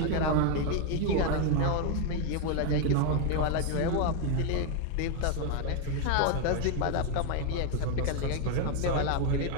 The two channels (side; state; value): both; different; correlation 0.01